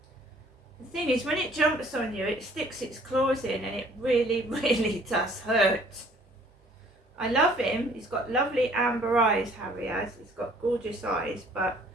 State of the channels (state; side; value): normal; both; correlation 0.57